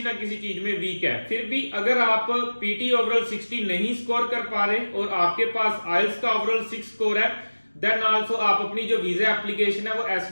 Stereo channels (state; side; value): inverted; both; correlation -1.00